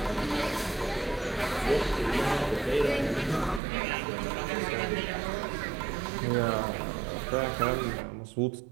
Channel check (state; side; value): drops out; left; at 3.6 s